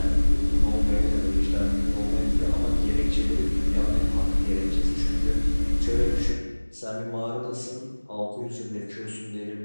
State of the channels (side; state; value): both; inverted; correlation -1.00